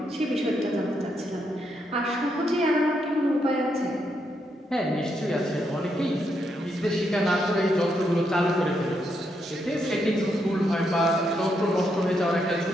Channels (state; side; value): normal; both; correlation 0.79